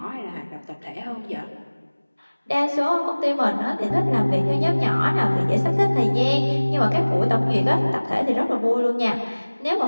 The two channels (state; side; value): inverted; both; correlation -1.00